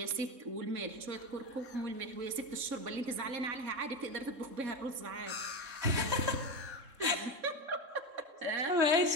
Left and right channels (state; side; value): late; left; 3.7 ms